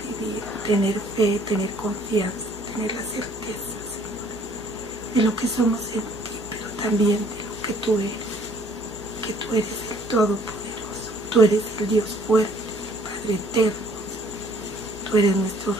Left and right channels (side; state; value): left; noise; hum, 26 dB below the sound